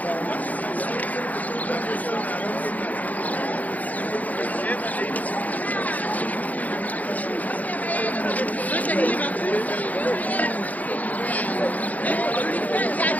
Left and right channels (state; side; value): late; right; 0.077 ms